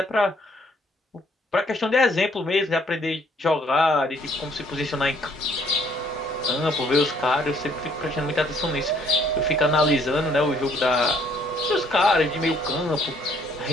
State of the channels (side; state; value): both; normal; correlation 0.64